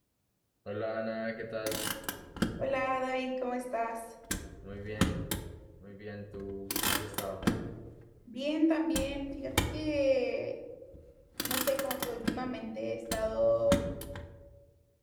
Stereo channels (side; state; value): both; identical; correlation 1.00